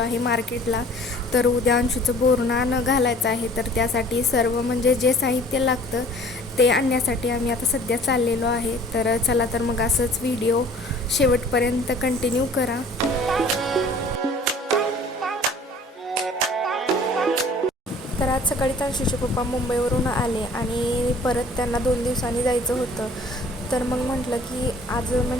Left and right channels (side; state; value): both; normal; correlation 0.51